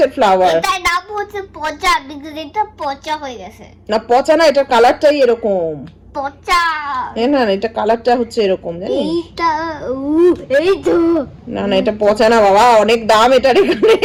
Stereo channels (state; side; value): identical; both; correlation 1.00